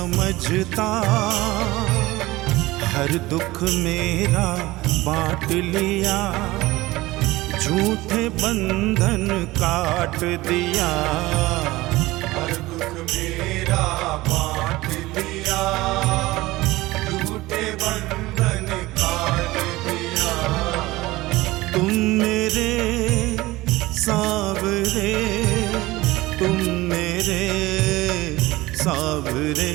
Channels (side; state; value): left; quieter; 19.2 dB